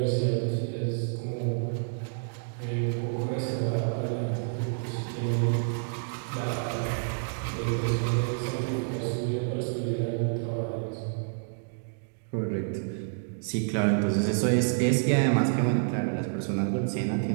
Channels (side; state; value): left; silent; digital silence